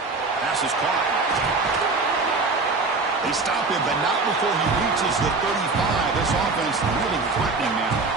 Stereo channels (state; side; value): quieter; left; 3.8 dB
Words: Pass is caught. They stop him, but not before he reaches the 35. This offense really threatening now.